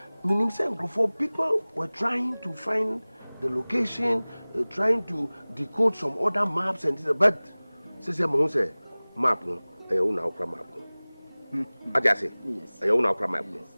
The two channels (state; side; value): inverted; both; correlation -1.00